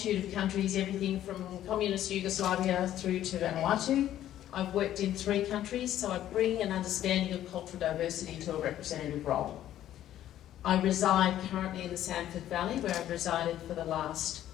of countries, everything from communist Yugoslavia through to Vanuatu. I've worked in 3 countries, so I bring an understanding of cultural diversity to a representative role. I reside currently in the Sanford Valley, where I've resided for the last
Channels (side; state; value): right; quieter; 12.2 dB